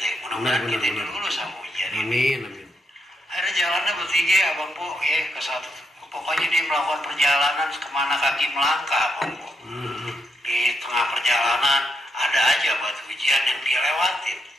Mudah-mudahan Benar, kita benar. lulus sama ujian ini. amin, amin. Akhirnya jalannya bertiga abang po ya ke satu. Pokoknya dia melakukan perjalanan kemana kaki melangkah abang po. Di tengah perjalanan ada aja batu ujian yang dia lewatin.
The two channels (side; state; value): both; normal; correlation 0.79